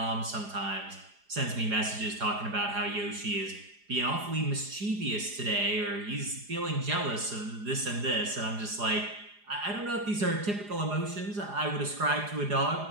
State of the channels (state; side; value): late; left; 4.9 ms